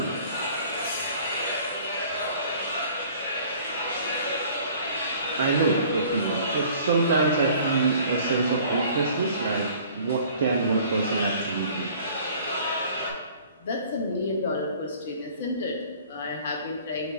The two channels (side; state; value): both; inverted; correlation -0.52